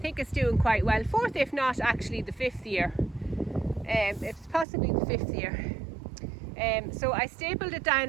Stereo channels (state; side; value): drops out; left; at 4.7 s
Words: it's doing quite well. 4th, if not actually the 5th year. It's possibly the 5th year. So I stapled it down